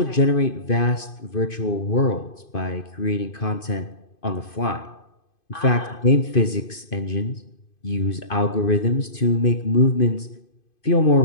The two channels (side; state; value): right; late; 2.5 ms